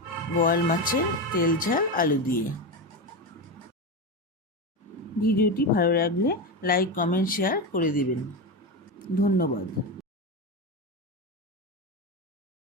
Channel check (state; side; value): normal; both; correlation 0.16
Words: বোয়াল মাছের তেল ঝাল আলু দিয়ে। ভিডিওটি ভালো লাগলে লাইক কমেন্ট শেয়ার করে দিবেন। ধন্যবাদ।